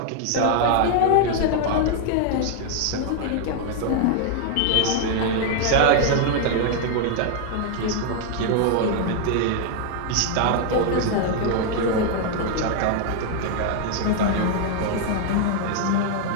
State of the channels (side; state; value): both; different; correlation 0.00